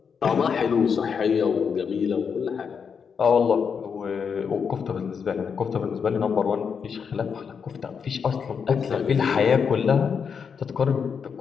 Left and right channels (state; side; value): quieter; right; 6.4 dB